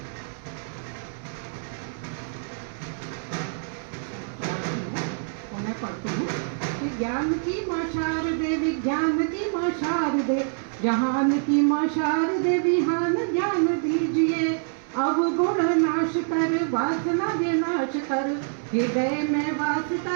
पढ़ती हूँ कि ज्ञान की माँ शारदे विज्ञान की माँ शारदे, जहान की माँ शारदे विहान ज्ञान दीजिए। अब गुण नाश कर वासना विनाश कर, हृदय में वास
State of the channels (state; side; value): silent; left; digital silence